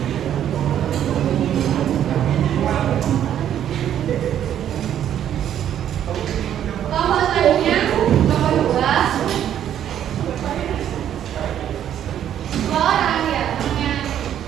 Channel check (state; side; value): quieter; left; 10.4 dB